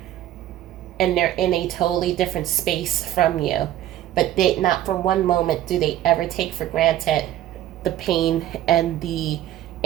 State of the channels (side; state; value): left; quieter; 12.8 dB